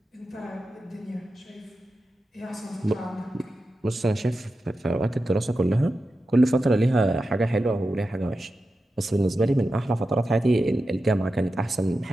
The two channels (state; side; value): normal; both; correlation 0.91